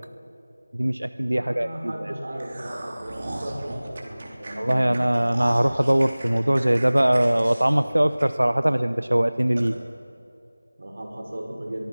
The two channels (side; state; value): both; inverted; correlation -1.00